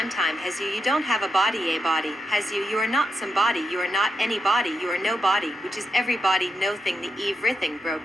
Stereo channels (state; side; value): normal; both; correlation 0.85